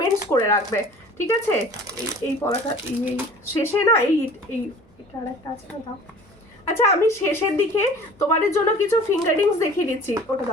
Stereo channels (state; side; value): normal; both; correlation 0.46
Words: করে রাখবে, ঠিক আছে? এই পড়াটা এই শেষে না, এটা আর একটা আছে না, দাও। আচ্ছা আমি শেষের দিকে তোমাদের জন্য কিছু ফিঙ্গারিংস দেখিয়ে দিচ্ছি, ওটা